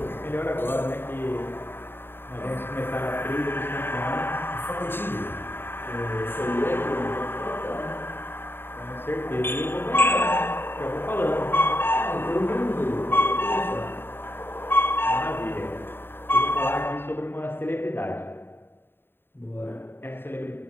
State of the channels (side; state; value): right; late; 0.10 ms